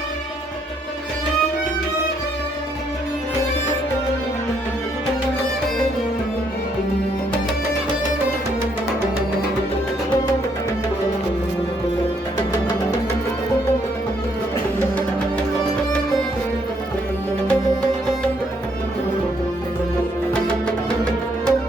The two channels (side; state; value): both; normal; correlation 0.71